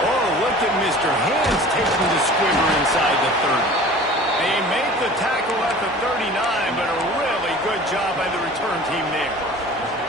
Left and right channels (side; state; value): both; normal; correlation 0.43